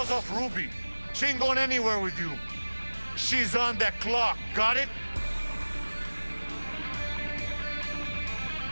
off Ruby. She ain't going anywhere with you. She's on that clock, got it?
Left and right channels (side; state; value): both; inverted; correlation -1.00